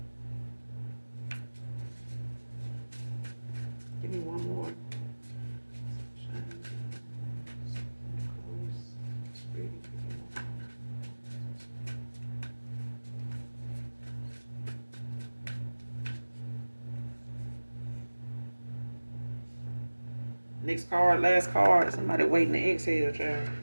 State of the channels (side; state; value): both; inverted; correlation -1.00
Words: Give me one more. Next card, last card. Somebody waiting to exhale, child.